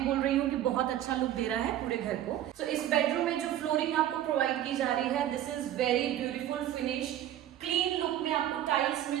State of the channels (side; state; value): left; quieter; 12.1 dB